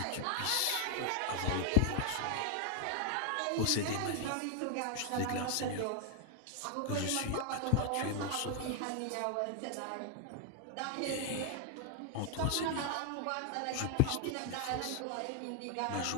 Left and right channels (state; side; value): different; both; correlation 0.00